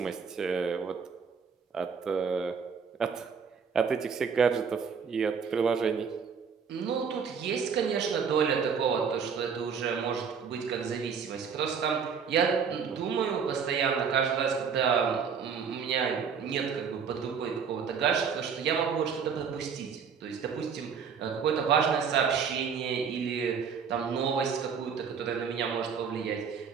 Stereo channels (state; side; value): quieter; left; 6.4 dB